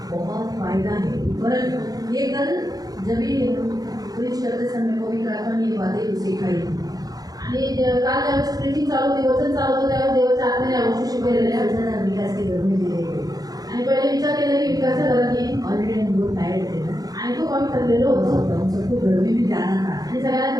बहुत फायदा है। पर ये कल जब भी प्रीच करते समय पवित्र आत्मा ने ये बातें सिखाई, आणि काल ज्यावेळेस प्रीचिंग चालू होती, वचन चालू होतं त्यावेळेस देवाच्या आत्म्याने या गोष्टी शिकवलेल्या आहेत. वचन विकास के घर में दिए गए। आणि पहिले विचार केला की विकासच्या घरात येईल ऑलरेडी हम लोग टायर्ड थे ना, आणि खूप आम्ही ठरलेलो होतो हम सबको घर में भी जाना था आणि सगळ्यांना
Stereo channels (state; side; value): late; left; 0.18 ms